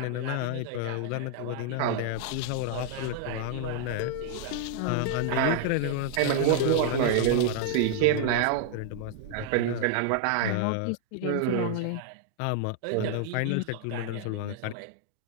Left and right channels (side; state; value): both; different; correlation -0.01